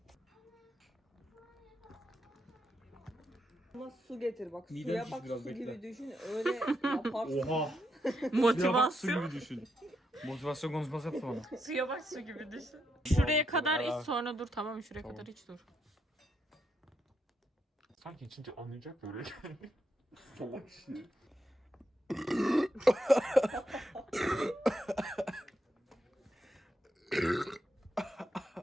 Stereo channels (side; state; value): both; normal; correlation 0.81